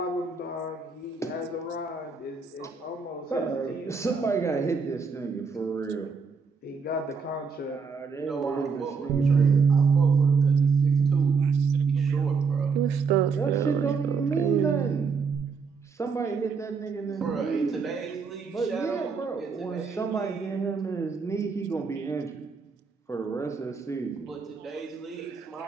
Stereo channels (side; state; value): left; quieter; 5.2 dB